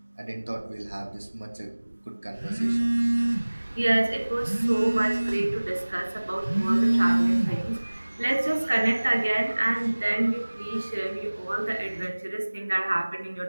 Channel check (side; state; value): both; inverted; correlation -1.00